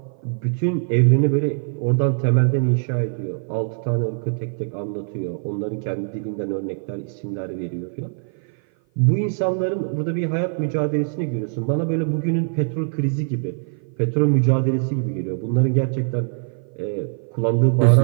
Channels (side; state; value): left; silent; 55 dB below the other